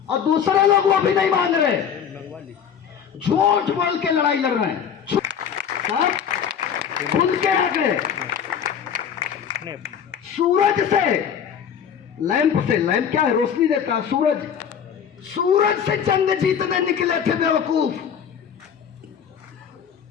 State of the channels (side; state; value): right; quieter; 7.9 dB